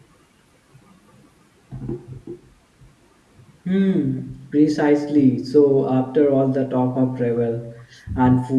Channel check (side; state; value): both; identical; correlation 1.00